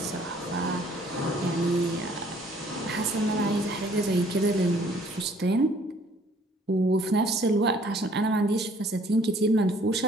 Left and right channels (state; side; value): normal; both; correlation 0.59